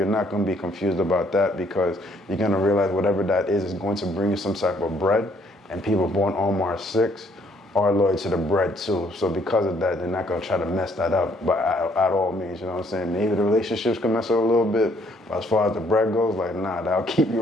not going to be confused about that, because you're going to realize whatever that is going to bring you some type of bread, and people born on March 6th are loyal to the bread too. So because of that, they're not going to try to mess that up at all means, you know what I'm saying? Maybe the relationships can mess up a little bit, but as far as the bread goes, like, nah, that'll keep you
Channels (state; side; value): normal; both; correlation 0.66